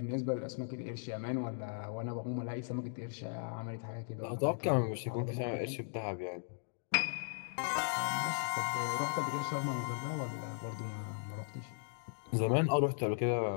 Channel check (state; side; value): silent; right; digital silence